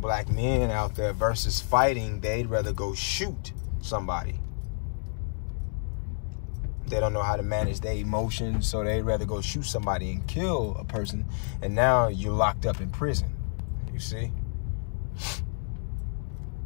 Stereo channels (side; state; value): right; silent; digital silence